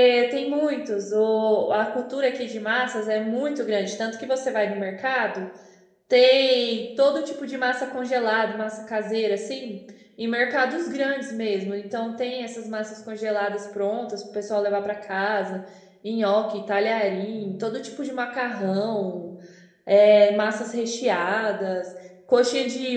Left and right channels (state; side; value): identical; both; correlation 1.00